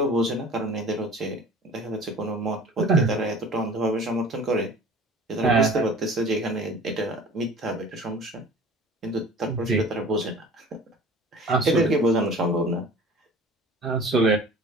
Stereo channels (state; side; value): normal; both; correlation 0.44